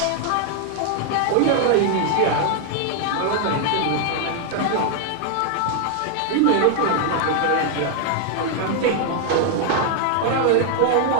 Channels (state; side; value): different; both; correlation 0.00